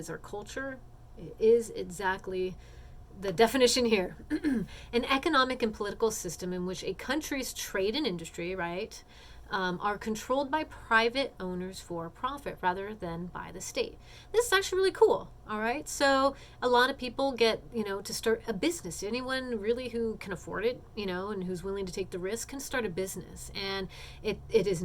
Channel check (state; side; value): identical; both; correlation 1.00